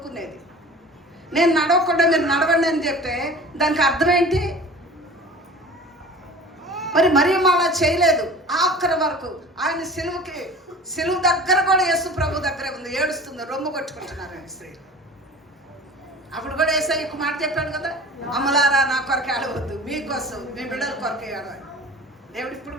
నేను నడవకుండా మీరు నడవండి అని చెప్తే దానికి అర్థం ఏంటి? మరి అలా చేయలేదు. ఆఖరి వరకు ఆయన సిలువు దగ్గర కూడా యేసు ప్రభు దగ్గరే ఉంది. ఏడుస్తుంది, రొమ్ము కొట్టుకుంటున్నారు స్త్రీలు. అప్పుడు కూడా యేసయ్య ఒక మాట చెప్పాడు కదా, అమ్మలారా నా కొరకు ఏడవద్దు, మీకోసం మీ బిడ్డల కొరకు ఏడవాలి. దేవుడు ఇప్పుడు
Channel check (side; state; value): both; normal; correlation 0.40